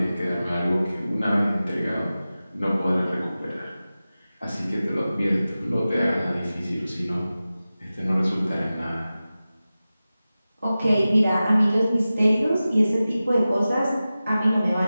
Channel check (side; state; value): both; inverted; correlation -0.95